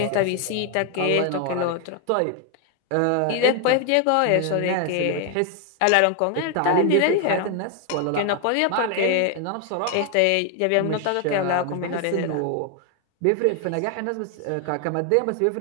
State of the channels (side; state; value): both; different; correlation 0.01